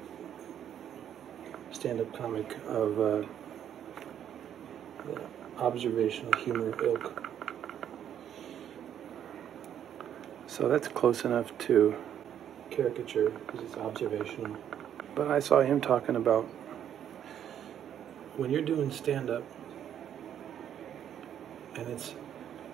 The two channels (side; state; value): left; quieter; 9.8 dB